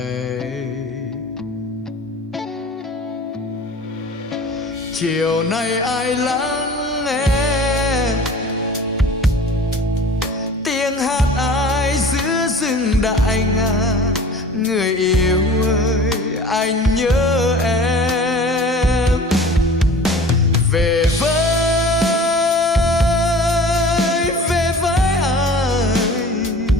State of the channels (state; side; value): normal; both; correlation 0.43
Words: Chiều nay ai lắng nghe tiếng hát ai giữa rừng đại ngàn. Người yêu ơi, anh nhớ em. Về với anh,